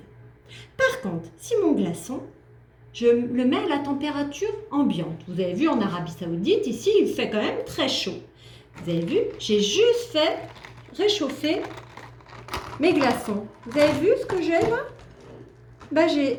Par contre, si mon glaçon, je le mets à la température ambiante. Vous avez vu en Arabie Saoudite, ici, il fait quand même très chaud. Vous avez vu, j'ai juste fait réchauffer mes glaçons. Vous avez vu ce que j'ai là? Ben,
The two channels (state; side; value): identical; both; correlation 1.00